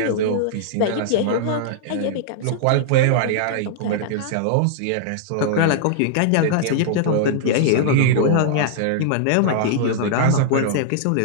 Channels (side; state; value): both; different; correlation -0.01